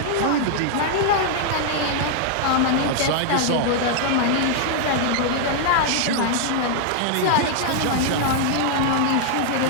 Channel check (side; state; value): both; different; correlation 0.00